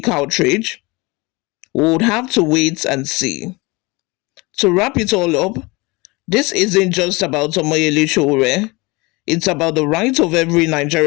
outrage? We would have to wait and see. To wrap it all up, this isn't just about Omoyele Sowore. It's about the right of every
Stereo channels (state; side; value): quieter; right; 24.9 dB